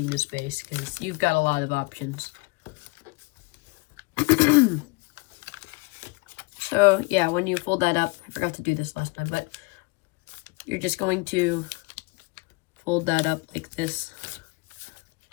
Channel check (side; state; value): right; quieter; 27.8 dB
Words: this base, because you've got a lot of options. So yeah, when you fold that up, I forgot to do this last time, but you're just going to fold that up like this.